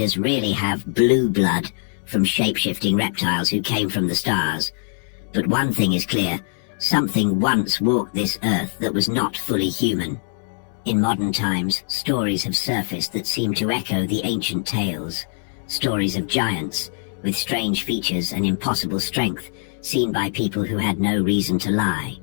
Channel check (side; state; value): right; silent; digital silence